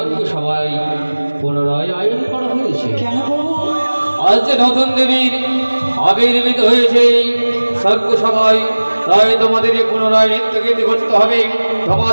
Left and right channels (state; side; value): inverted; both; correlation -1.00